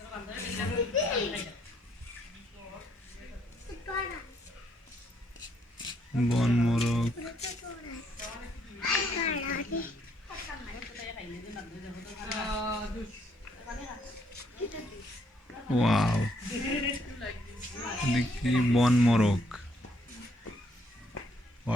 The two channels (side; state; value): both; normal; correlation 0.70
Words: বন মোরগ, ওয়াও, দেখি বন মোরগ,